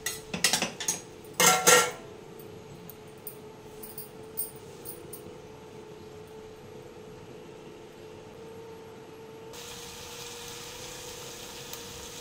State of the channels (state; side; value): identical; both; correlation 1.00